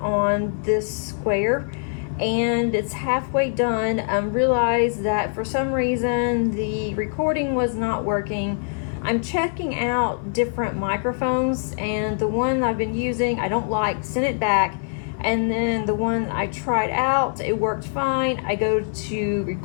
this square, and it's halfway done. Realized that for some reason the recording was not working. I'm checking out different microphones, and the one I've been using I don't like, sent it back, and then the one I tried out, it worked fine. I go to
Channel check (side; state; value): right; silent; 62 dB below the other